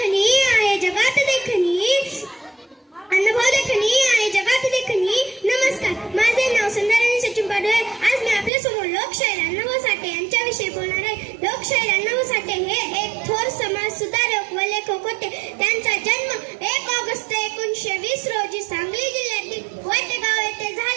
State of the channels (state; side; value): drops out; left; at 8.5 s